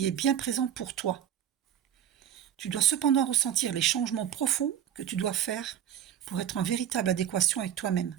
est bien présent pour toi. Tu dois cependant ressentir les changements profonds que tu dois faire pour être en véritable adéquation avec toi-même.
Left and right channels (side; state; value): left; quieter; 9.8 dB